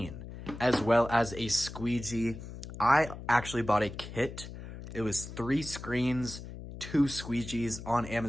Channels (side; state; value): left; noise; hum, 11 dB below the sound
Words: as well as a squeegee. I actually bought a kit. It was 3 screens, 2 squeegees on